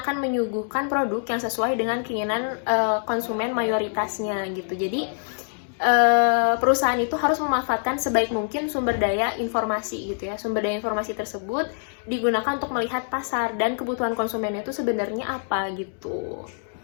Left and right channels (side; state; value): right; silent; digital silence